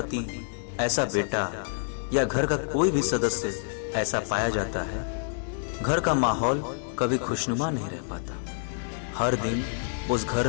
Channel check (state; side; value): silent; right; digital silence